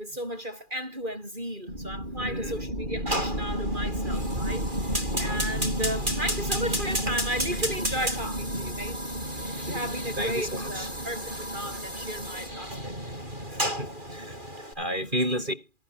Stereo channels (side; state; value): left; late; 2.4 ms